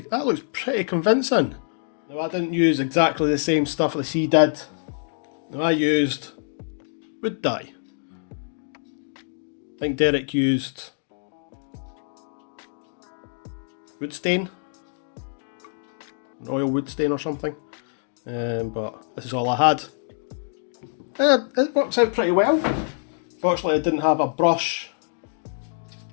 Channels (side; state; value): right; silent; digital silence